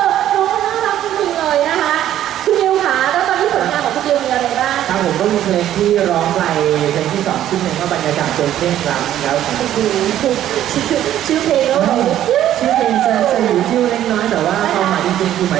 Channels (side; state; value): left; quieter; 11.9 dB